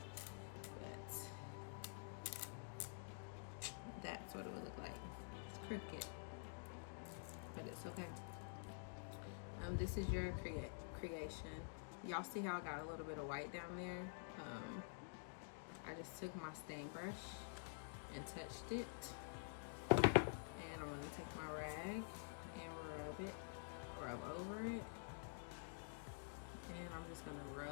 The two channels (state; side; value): silent; right; digital silence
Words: but that's what it would look like. It's crooked, but it's okay. This is your creation. Y'all see how I got a little bit of white down there? I just took my stain brush and touched it, and I'm gonna take my rag and rub over it, and I'm just gonna